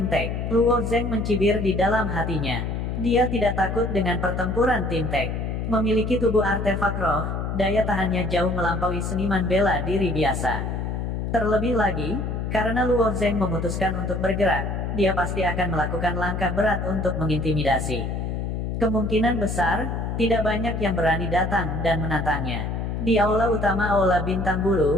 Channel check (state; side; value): noise; left; hum, 3 dB below the sound